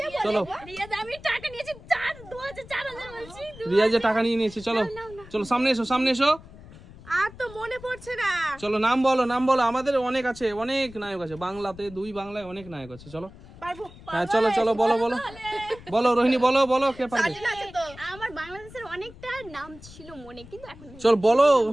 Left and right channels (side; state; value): left; noise; rumble, 19 dB below the sound